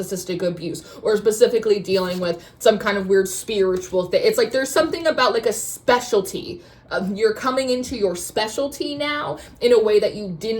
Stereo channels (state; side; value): identical; both; correlation 1.00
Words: abuse, or specifically dealing with some kind of weird spiritual thing. It's like there's something about like a specialty. You're coming into your specialty now in a way that you